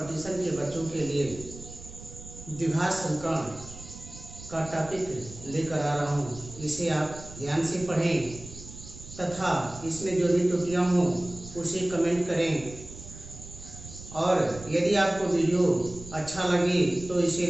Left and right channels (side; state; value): right; noise; rumble, 15 dB below the sound